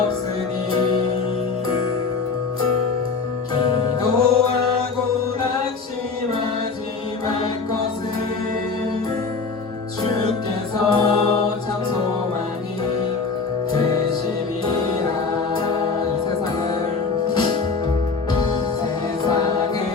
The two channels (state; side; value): quieter; right; 4.6 dB